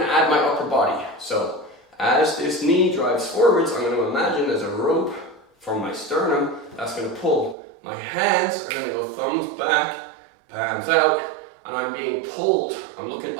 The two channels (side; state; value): left; drops out; at 7.6 s